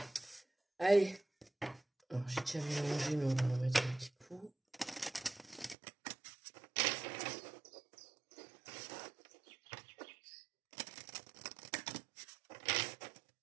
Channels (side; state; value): left; drops out; at 5.8 s